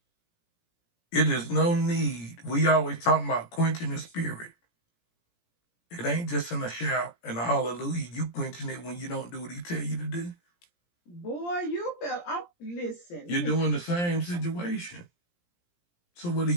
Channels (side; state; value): right; late; 17 ms